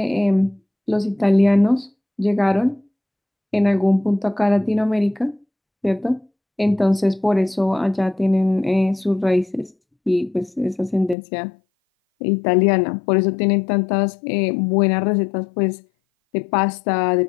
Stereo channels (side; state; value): right; drops out; at 11.2 s